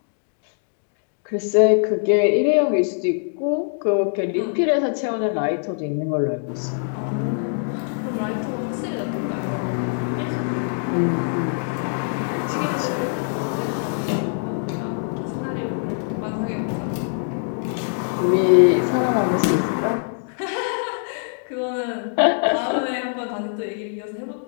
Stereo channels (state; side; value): silent; right; digital silence